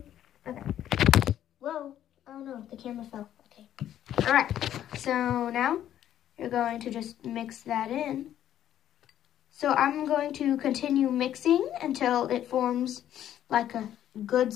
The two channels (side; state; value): right; quieter; 11.2 dB